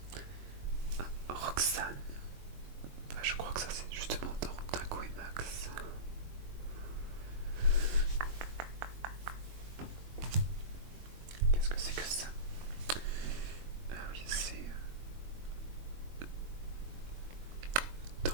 Ah, Roxane. Ah, je crois que ça c'est justement dans Dingo et Max. Qu'est-ce que c'est que ça? Ah oui, c'est dans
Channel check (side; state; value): left; late; 22 ms